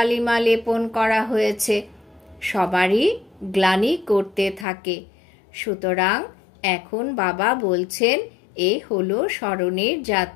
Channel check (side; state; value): right; drops out; at 4.7 s